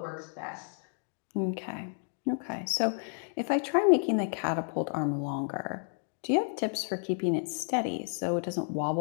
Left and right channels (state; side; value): silent; right; 57 dB below the other